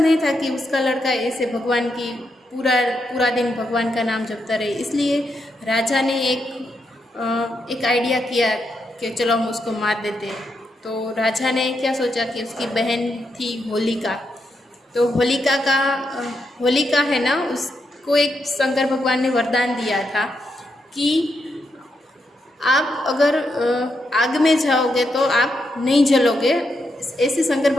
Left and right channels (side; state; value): both; normal; correlation 0.82